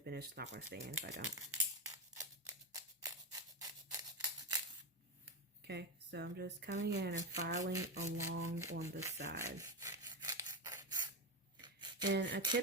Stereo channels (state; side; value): normal; both; correlation 0.12